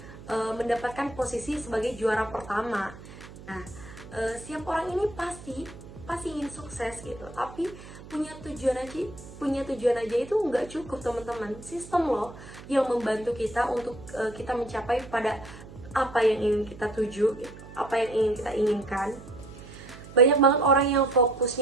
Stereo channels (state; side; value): noise; right; hum, 16 dB below the sound